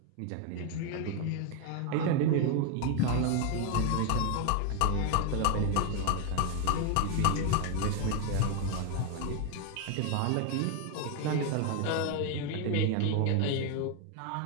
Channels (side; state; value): both; different; correlation 0.01